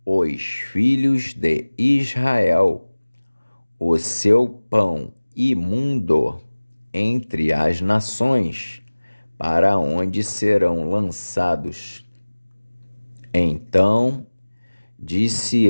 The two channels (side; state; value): both; inverted; correlation -1.00